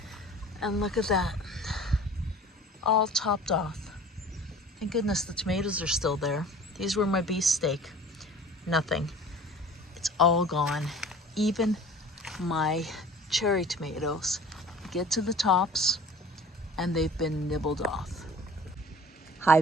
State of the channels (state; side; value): normal; both; correlation 0.45